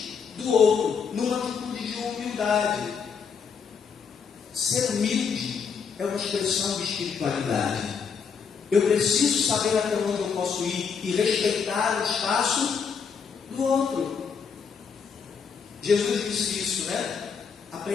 do outro, numa atitude de humildade. Ser humilde é uma expressão de espiritualidade. Eu preciso saber até onde eu posso ir e respeitar o espaço do outro. Jesus disse isso, né?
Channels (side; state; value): right; quieter; 6.1 dB